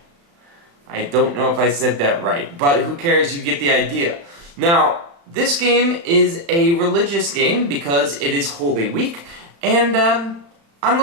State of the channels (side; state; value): left; late; 35 ms